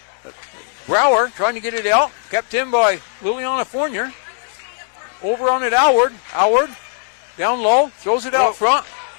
Brower trying to get it out, kept in by Liliana Fournier. Over on it, Howard. Howard, down low, throws it out front.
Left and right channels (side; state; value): right; silent; digital silence